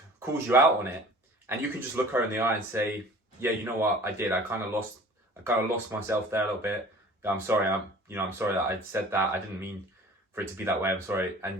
calls you out on it, and you can just look her in the eye and say, yeah, you know what, I did. I kind of lost myself there a little bit. I'm sorry. I'm sorry that I said that. I didn't mean for it to be that way. I'm sorry.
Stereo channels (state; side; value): normal; both; correlation 0.45